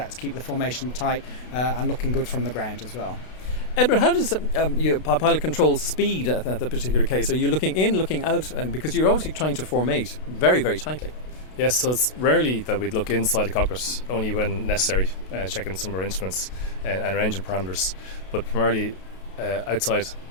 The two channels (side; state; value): right; late; 32 ms